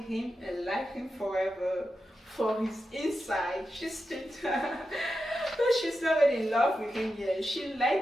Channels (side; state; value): both; normal; correlation 0.89